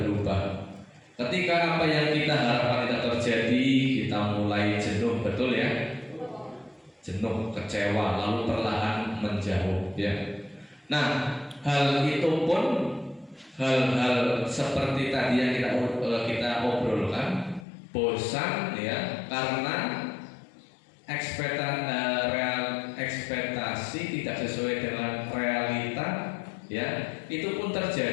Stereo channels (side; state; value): right; drops out; at 17.7 s